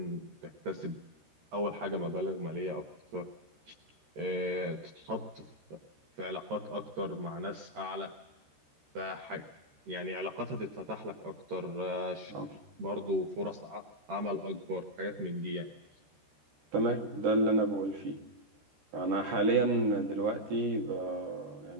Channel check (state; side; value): late; left; 13 ms